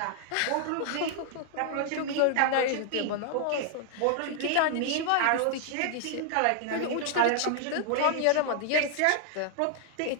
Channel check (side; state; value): both; different; correlation 0.00